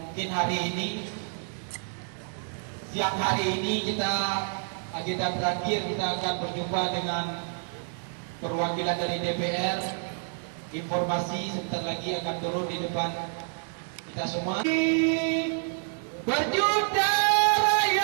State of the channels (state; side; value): silent; left; 59 dB below the other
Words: mungkin hari ini, siang hari ini agenda terakhir kita akan berjumpa dengan perwakilan dari DPR. Informasi sebentar lagi akan turun di depan kita semua. Berjuta